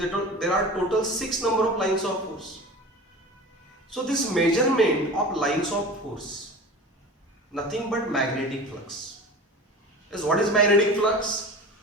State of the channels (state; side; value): normal; both; correlation 0.35